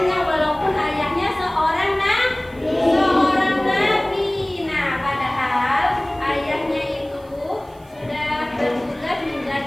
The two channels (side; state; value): right; noise; hiss, 30 dB below the sound